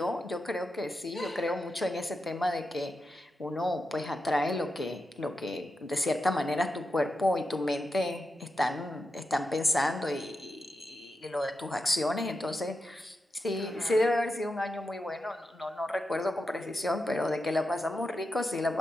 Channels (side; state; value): both; normal; correlation 0.88